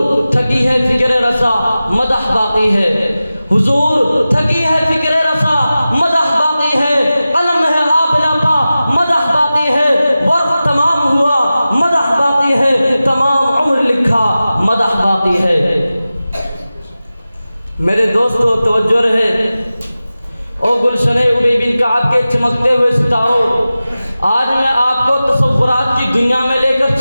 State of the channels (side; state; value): both; inverted; correlation -0.95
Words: تھکی ہے فکر رسا، مدح باقی ہے، حضور تھکی ہے فکر رسا، مدح باقی ہے، قلم ہے آب نہ میرے دوستو توجہ رہے، او گلشن ابی بن کعب کے چمکتے ہوئے ستاروں، آج میں آپ کو تصورات کی دنیا میں لے کر